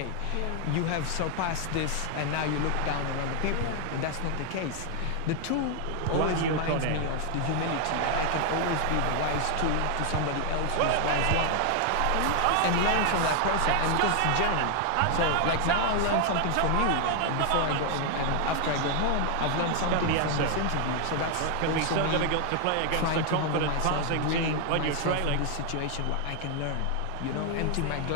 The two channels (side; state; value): both; different; correlation 0.00